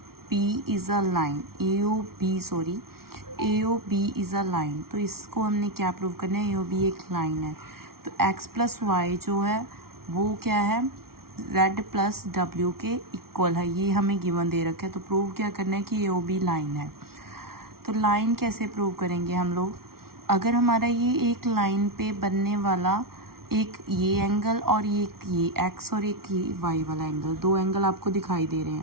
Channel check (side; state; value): left; late; 0.94 ms